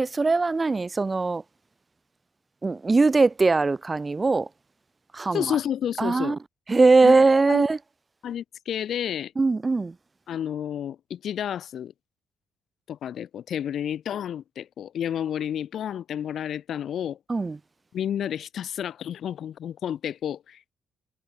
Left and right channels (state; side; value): normal; both; correlation 0.89